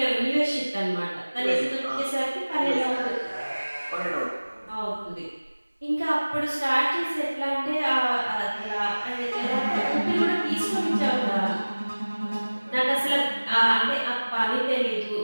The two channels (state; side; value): inverted; both; correlation -1.00